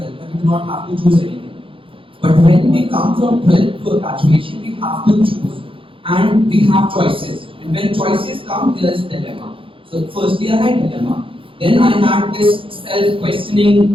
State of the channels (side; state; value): left; late; 0.25 ms